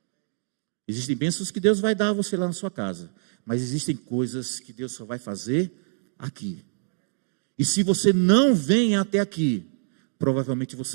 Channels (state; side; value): silent; left; digital silence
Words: Existem bênçãos que Deus vai dar a você lá na sua casa, mas existem coisas que Deus só vai fazer aqui. E se você não vem até aqui, provavelmente